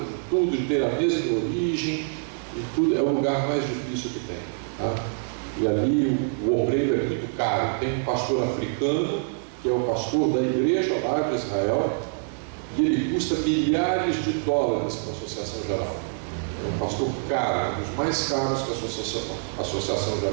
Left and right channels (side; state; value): left; silent; 61 dB below the other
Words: tudo, de ter a mesma origem, e tudo, é o lugar mais difícil que tem. Tá? E ali o obreiro é muito caro. Tem um pastor africano, que é o pastor da igreja lá de Israel, e ele custa milhares de dólares para a Associação Geral. É um pastor caro, um dos mais caros que a Associação